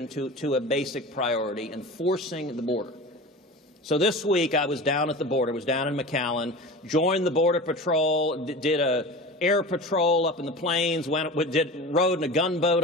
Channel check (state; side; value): normal; both; correlation 0.33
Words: to a basic priority, enforcing the border. So this week I was down at the border, was down in McAllen, joined the Border Patrol, did a air patrol up in the plains, rode in a gunboat